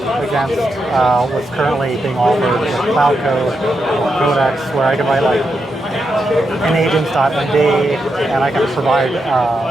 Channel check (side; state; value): both; normal; correlation 0.85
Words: against what's currently being offered with Cloud Code or Codex, where I can write like an agents.md and I can provide